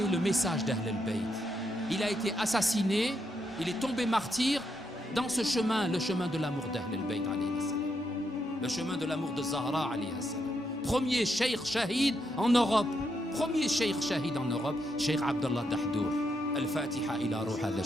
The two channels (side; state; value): both; normal; correlation 0.80